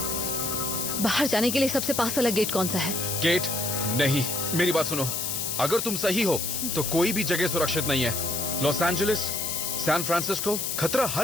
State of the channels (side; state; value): left; noise; hiss, 2 dB below the sound